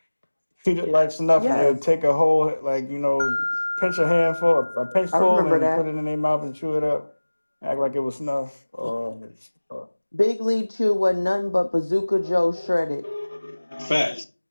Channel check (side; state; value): both; inverted; correlation -1.00